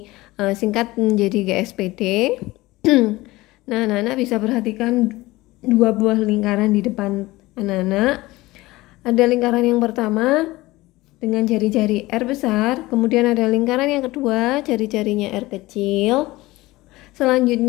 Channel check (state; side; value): quieter; right; 19.4 dB